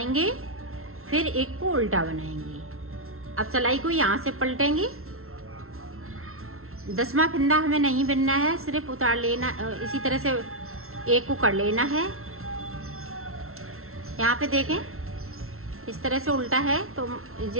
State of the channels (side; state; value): left; late; 0.62 ms